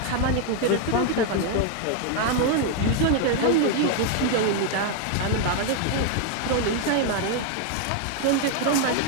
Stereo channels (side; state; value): both; different; correlation 0.00